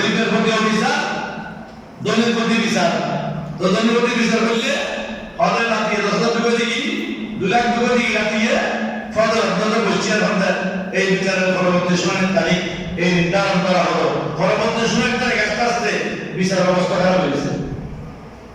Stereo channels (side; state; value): both; identical; correlation 1.00